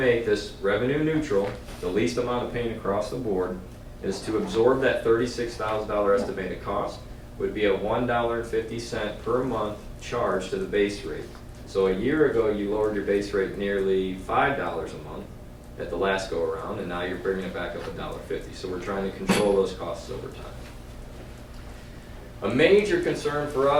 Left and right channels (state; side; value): identical; both; correlation 1.00